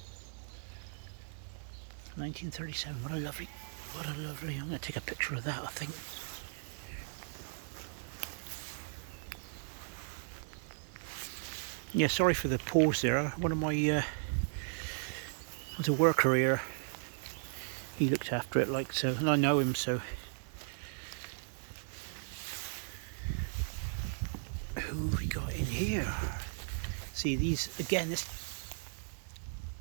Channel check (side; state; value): left; silent; digital silence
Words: 1937. What a lovely, I'm going to take a picture of that, I think. Yeah, sorry for the pause there. One of my, was a worker here. He looked after it like so, and I know him, so. Who have we got in here? See these, again, this,